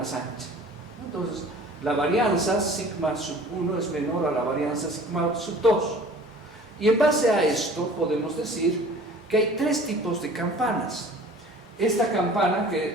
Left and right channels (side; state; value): both; normal; correlation 0.47